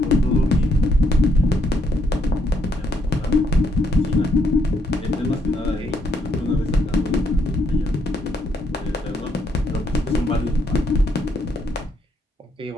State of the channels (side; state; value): both; normal; correlation 0.73